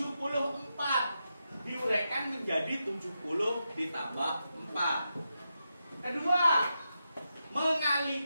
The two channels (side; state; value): both; inverted; correlation -0.87